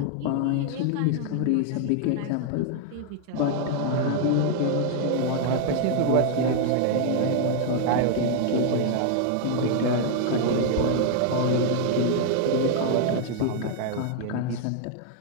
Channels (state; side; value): different; both; correlation 0.00